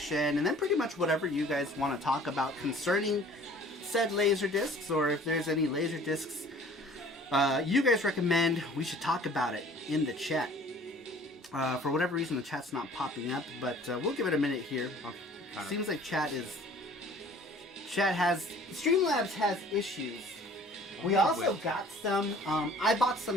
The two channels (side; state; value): both; normal; correlation 0.50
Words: and then pretty much whatever you guys want to talk about concerning said LaserDiscs, or if there's any LaserDiscs you guys recommend, we should talk about it in the chat. For whatever reason, the chat's not popping up, but we'll give it a minute here. Seems like Streamlabs has issues. We also got some, I bought